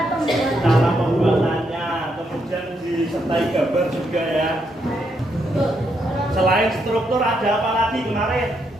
cara pembuatannya, kemudian disertai gambar juga ya. Selain struktur ada apa lagi kemarin?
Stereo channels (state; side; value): normal; both; correlation 0.78